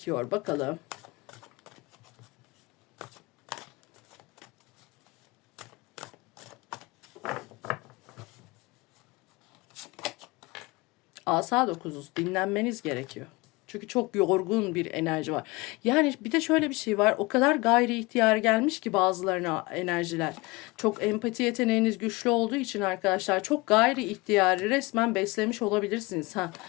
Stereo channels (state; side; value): quieter; right; 23.7 dB